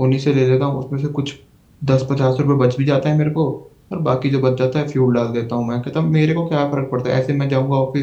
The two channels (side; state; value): both; identical; correlation 1.00